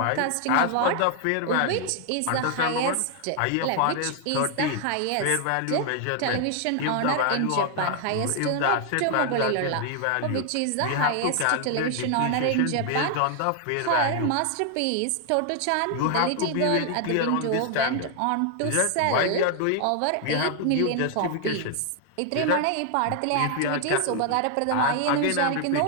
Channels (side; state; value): both; different; correlation 0.00